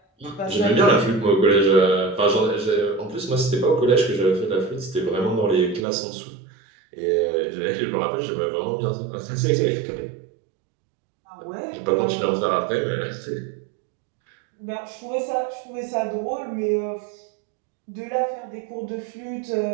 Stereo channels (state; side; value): drops out; left; at 5.9 s